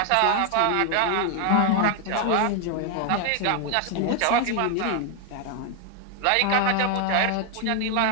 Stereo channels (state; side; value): different; both; correlation 0.00